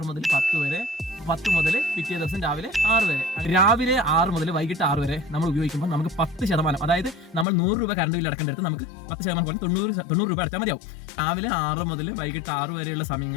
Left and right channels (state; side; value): drops out; right; at 7.5 s